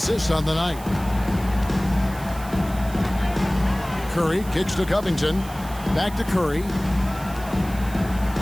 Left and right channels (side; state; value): right; noise; hiss, 17 dB below the sound